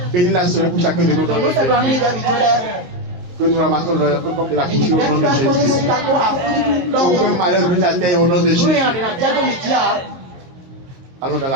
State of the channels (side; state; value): left; late; 23 ms